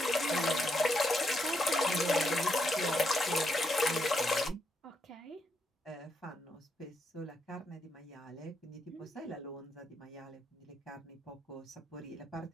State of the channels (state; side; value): normal; both; correlation 0.79